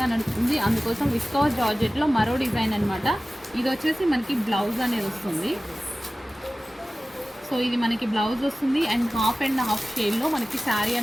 నడుస్తుంది, అందుకోసం విస్కాస్ జార్జెట్లో మరో డిజైన్ అనమాట. ఇది వచ్చేసి మనకి బ్లౌజ్ అనేది వస్తుంది. సో ఇది మనకి బ్లౌజ్ వస్తుంది అండ్ హాఫ్ అండ్ హాఫ్ షేడ్లో మనకి శారీ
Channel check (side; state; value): both; normal; correlation 0.97